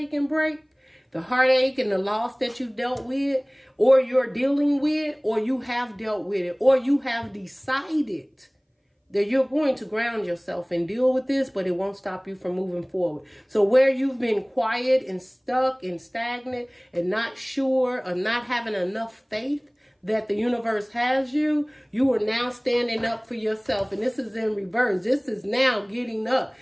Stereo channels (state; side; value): identical; both; correlation 1.00